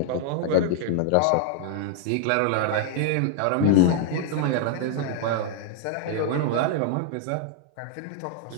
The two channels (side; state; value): both; different; correlation 0.00